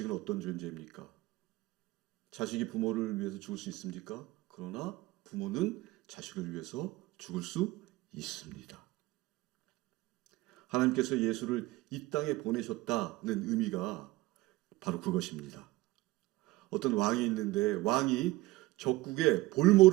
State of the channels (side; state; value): left; quieter; 19.5 dB